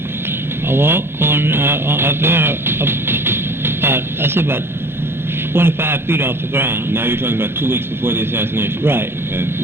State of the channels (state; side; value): late; left; 0.11 ms